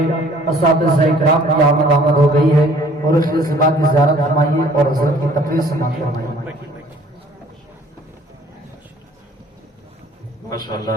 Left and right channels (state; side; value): normal; both; correlation 0.55